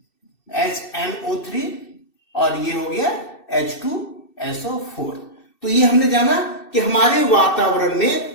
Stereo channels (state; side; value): late; right; 2.6 ms